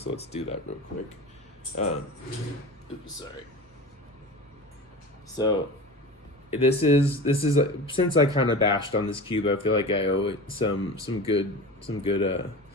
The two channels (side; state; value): both; normal; correlation 0.32